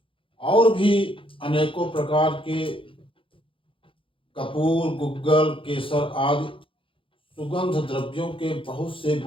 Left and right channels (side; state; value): right; late; 0.25 ms